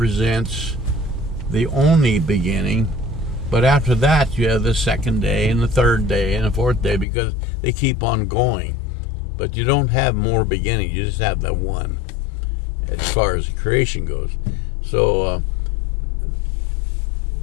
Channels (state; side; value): drops out; right; at 7.1 s